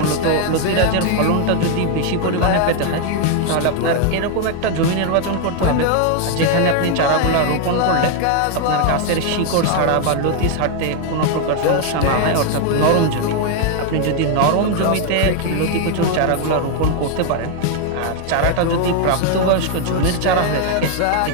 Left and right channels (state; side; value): different; both; correlation 0.00